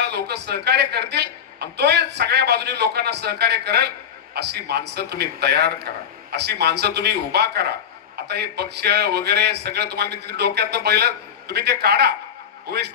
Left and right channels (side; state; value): right; quieter; 8.2 dB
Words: लोक सहकार्य करतील आणि तो सगळ्या बाजूनी लोकांना सहकार्य करेल अशी माणसं तुम्ही तयार करा, अशी माणसं तुम्ही उभा करा. आता हे पक्ष वगैरे सगळं तुम्हाला मी तिथे डोक्यातनं पहिलं तुम्ही ते काढा. उमेश